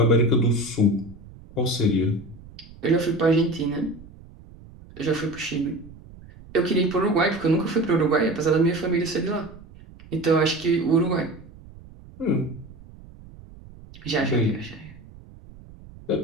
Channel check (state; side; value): noise; right; rumble, 20 dB below the sound